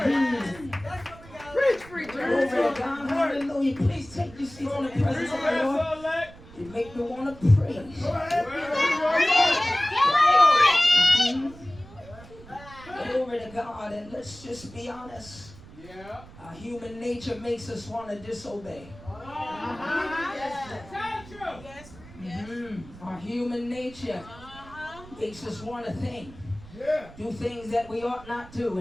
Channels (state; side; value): noise; right; rumble, 19 dB below the sound